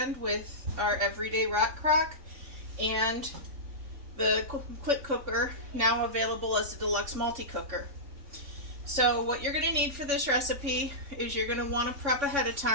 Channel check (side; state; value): left; late; 3.6 ms